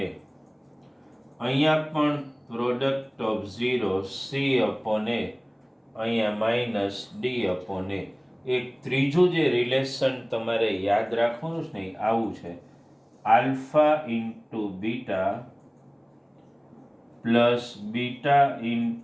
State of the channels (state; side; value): identical; both; correlation 1.00